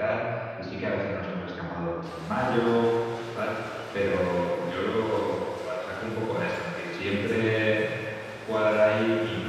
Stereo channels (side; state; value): both; identical; correlation 1.00